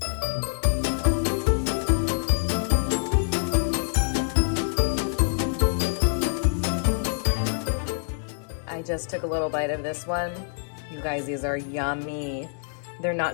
I just took a little bite of this one. You guys, these are yummy. They're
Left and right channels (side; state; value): right; silent; 61 dB below the other